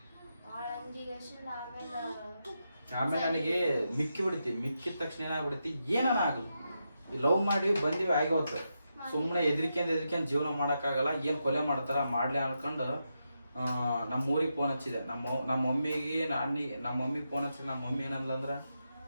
ಭಾಳ ಅಂಜಿಗೇಶನ್. ಆಮೇಲೆ ನನಗೆ ಮಿಕ್ಕಿ ಬಿಡ್ತಿ, ಮಿಕ್ಕಿದ ತಕ್ಷಣ ಏನಾಗ್ಬಿಡ್ತಿ, ಏನನ ಆಗಲ್ಲ, ಲವ್ ಮಾಡಿ ಬಂದಿವಿ ಆಗೋತ್ತು, ಸುಮ್ಮನೆ ಎದ್ರಿಕೆಂದು ಜೀವನ ಮಾಡೋಕ್ಕಾಗಲ್ಲ, ಏನು ಕೊಲೆ ಮಾಡ್ತಾರ ಮಾಡ್ಲಿ ಅನ್ಕೊಂಡು ನಮ್ಮ ಊರಿಗೆ ಫೋನ್ ಹಚ್ಚಿದೆ. ನಮ್ಮ ಮಮ್ಮಿಗೆ ನಮ್ಮ ಮಮ್ಮಿಗೆ ಫೋನ್ ಹಚ್ಚಿದೆ. ನಮ್ಮ ಮಮ್ಮಿ ಏನಂದ್ರೆ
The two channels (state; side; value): inverted; both; correlation -0.85